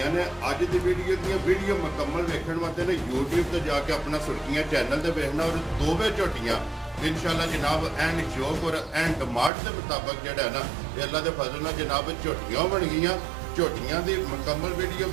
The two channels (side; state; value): left; drops out; at 9.5 s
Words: ने। अज की वीडियो मुकम्मल वेखण वास्ते ने यूट्यूब पर जाके अपना सुर्खियां चैनल से वेखना और दोवें झोटियां इंशाअल्लाह जनाब एंड शौक और एंड डिमांड के मुताबिक जो है ना अल्लाह के फजल नाल जनाब झोटियां बन गई। झोटियां की मुकम्मल वीडियो